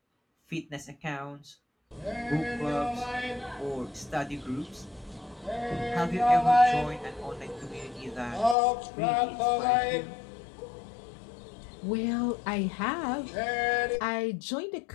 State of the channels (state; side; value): drops out; right; at 8.6 s